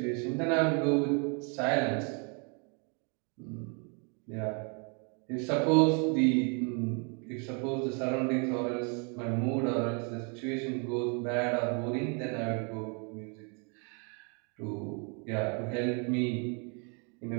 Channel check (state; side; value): quieter; left; 36.8 dB